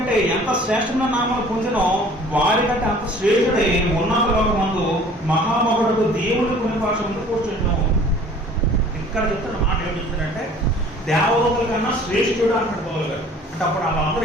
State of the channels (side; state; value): both; normal; correlation 0.50